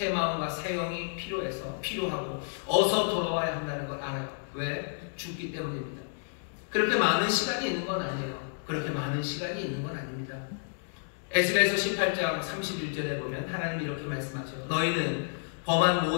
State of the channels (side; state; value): right; silent; digital silence